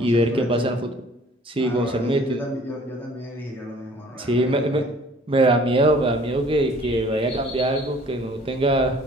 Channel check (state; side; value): normal; both; correlation 0.53